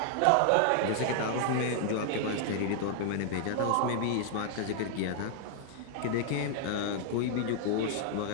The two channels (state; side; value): different; both; correlation -0.01